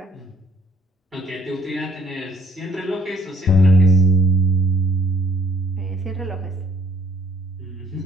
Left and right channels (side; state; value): both; normal; correlation 0.61